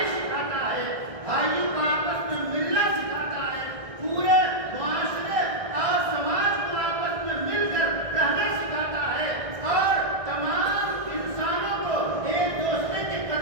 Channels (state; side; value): late; left; 1.6 ms